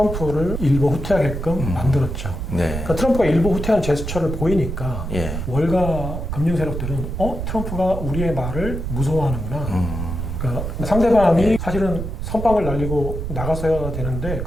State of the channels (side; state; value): right; noise; rumble, 5 dB below the sound